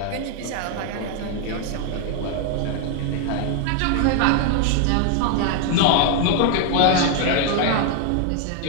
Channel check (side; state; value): both; different; correlation 0.00